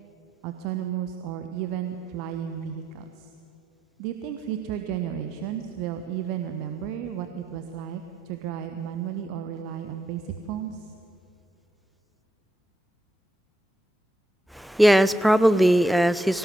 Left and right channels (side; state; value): both; normal; correlation 0.81